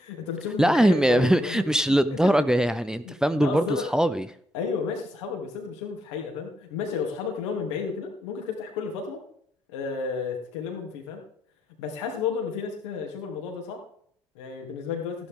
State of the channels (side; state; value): both; normal; correlation 0.78